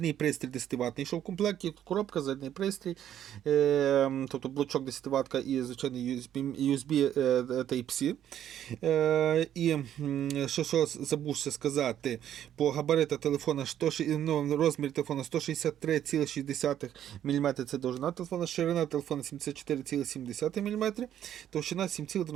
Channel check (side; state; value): left; quieter; 10.7 dB